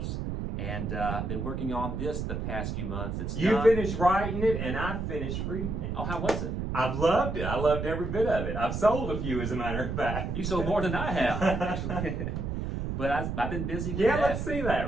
and I've been working on this the past few months. It's You done. finished writing it and I finished reading it. Oh, how was it? I've loved it. I loved every bit of it. I've sold a few, as a matter of fact. You sold more than I have, actually. But I've been busy with that. Let's see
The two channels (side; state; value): right; noise; rumble, 3 dB below the sound